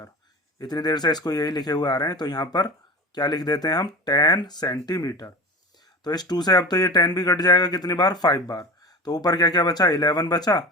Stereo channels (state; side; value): normal; both; correlation 0.32